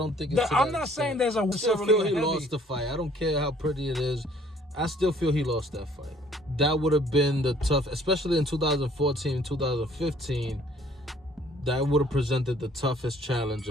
think it's. I'm not saying there's a. I still feel he lost the fight. I don't care how pretty it is. I still feel he lost that fight. That would have been the tough, especially in 2014, 2015. That would have presented the toughest challenge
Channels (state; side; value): normal; both; correlation 0.58